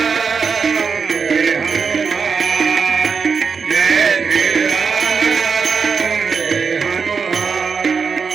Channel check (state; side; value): quieter; left; 5.6 dB